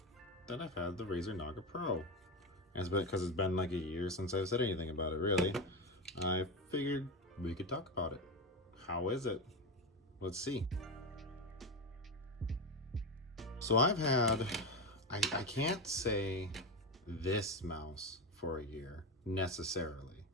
that I've had the Razer Naga Pro. And it's been because it's been like a year since I've said anything about it, really. I figured we could talk about it. How is it? Let's see. So I can't say this mouse for a year necessarily,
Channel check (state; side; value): normal; both; correlation 0.16